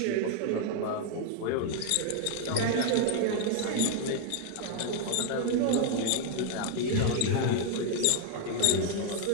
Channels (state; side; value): different; both; correlation 0.00